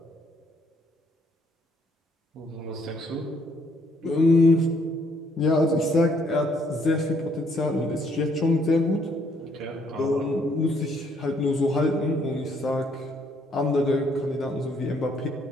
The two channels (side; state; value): both; normal; correlation 0.68